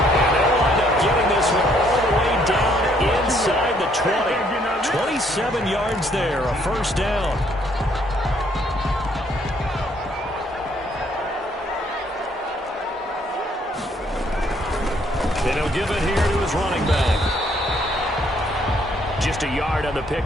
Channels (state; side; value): normal; both; correlation 0.67